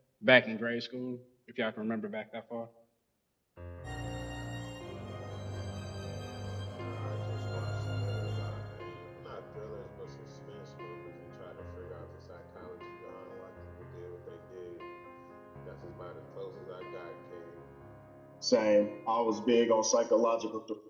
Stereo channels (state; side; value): identical; both; correlation 1.00